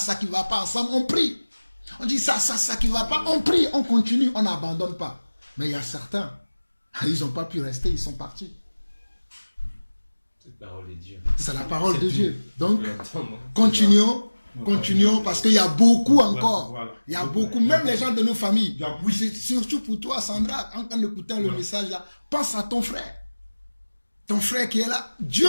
qui ne va pas ensemble, on prie. On dit ça qui ne va pas, on prie, on continue, on n'abandonne pas. Mais il y a certains, ils n'ont pas pu rester, ils sont partis. Cette parole est Dieu. C'est la parole de Dieu. Donc, continuons, parce qu'il y a beaucoup encore. Il y a beaucoup, même les gens de nos familles. Surtout pour toi, Sandra, en écoutant le message là, pense à ton frère. Ton frère qui est là, Dieu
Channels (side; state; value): both; inverted; correlation -1.00